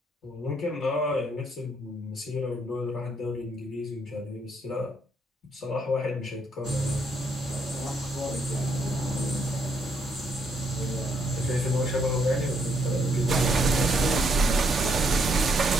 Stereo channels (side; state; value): both; normal; correlation 0.73